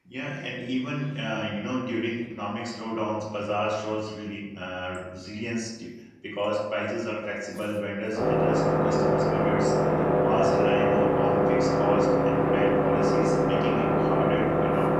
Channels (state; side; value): identical; both; correlation 1.00